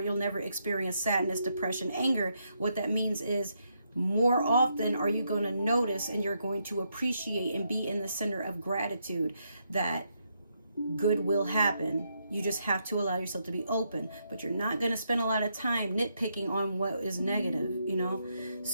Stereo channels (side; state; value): both; inverted; correlation -0.79